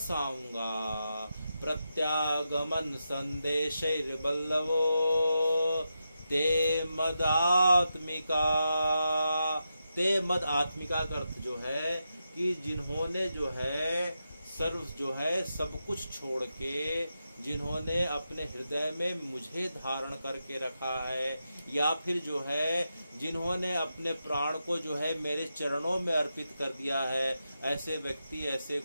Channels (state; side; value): inverted; both; correlation -0.87